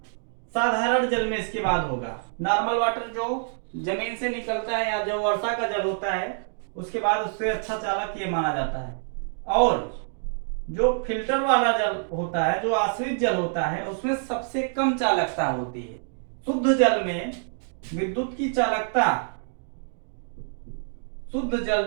साधारण जल में इसके बाद होगा नॉर्मल वाटर, जो जमीन से निकलता है या जो वर्षा का जल होता है, उसके बाद उससे अच्छा चालक ये माना जाता है। और जो फिल्टर वाला जल होता है, जो आश्रित जल होता है, उसमें सबसे कम चालकता होती है। शुद्ध जल में विद्युत की चालकता, शुद्ध जल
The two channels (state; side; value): silent; left; digital silence